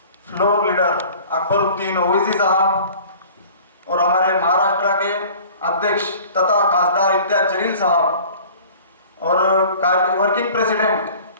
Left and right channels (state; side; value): inverted; both; correlation -0.46